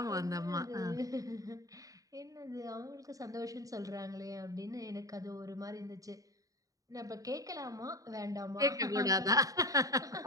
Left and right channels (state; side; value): late; left; 0.17 ms